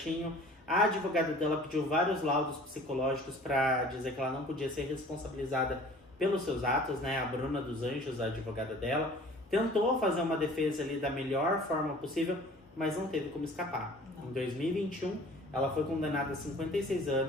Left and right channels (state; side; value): normal; both; correlation 0.48